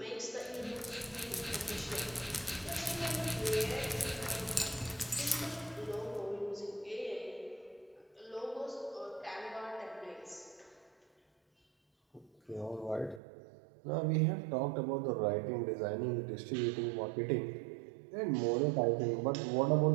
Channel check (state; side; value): drops out; left; at 13.2 s